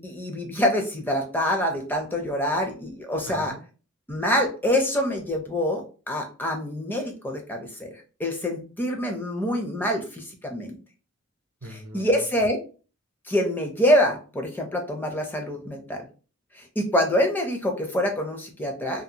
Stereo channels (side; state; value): both; normal; correlation 0.36